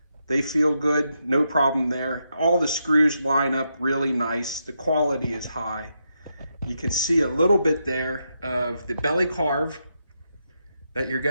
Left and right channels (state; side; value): inverted; both; correlation -0.83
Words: They feel good, no problem there. All the screws line up really nice. The quality is high. You can see a little bit there of the belly carve that you're